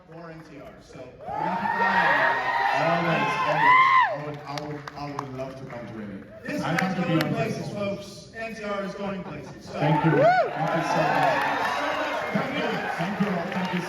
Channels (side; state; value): both; identical; correlation 1.00